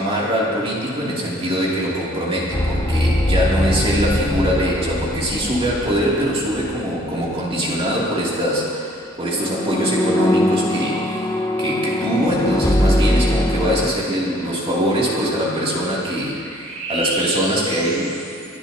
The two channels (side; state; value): both; normal; correlation 0.58